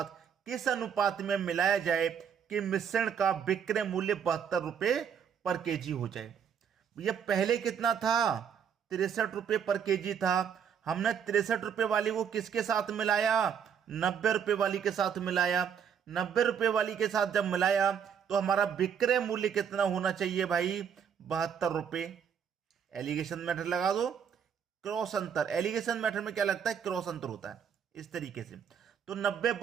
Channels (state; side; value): quieter; left; 7.7 dB